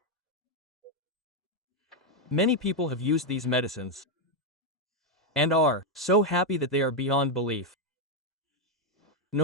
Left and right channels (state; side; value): normal; both; correlation 0.03